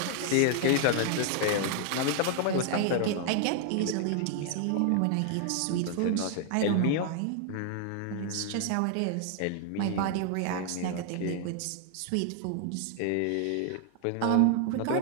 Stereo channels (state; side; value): different; both; correlation 0.00